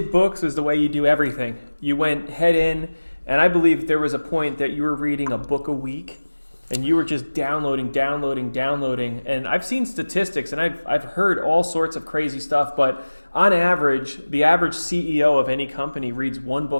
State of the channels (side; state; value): both; inverted; correlation -1.00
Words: books is the way you do everything. You went head in, and I believe there was a point that you were reading a book a week, and you were just downloading. And I've seen statistics, and I've heard all sorts of crazy stuff, but on average, the average CEO of any company reads one